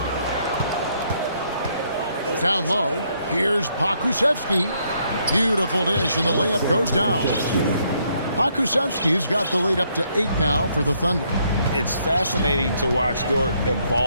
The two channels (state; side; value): inverted; both; correlation -0.72